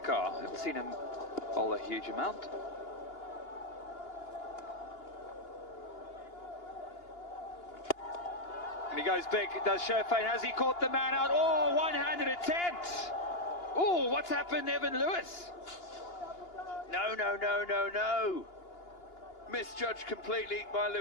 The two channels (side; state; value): right; late; 2.8 ms